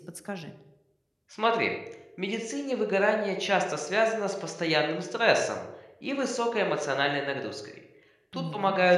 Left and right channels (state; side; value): identical; both; correlation 1.00